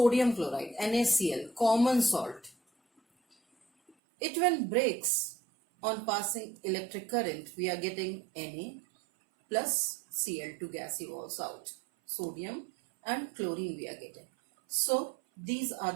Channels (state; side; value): drops out; left; at 3.9 s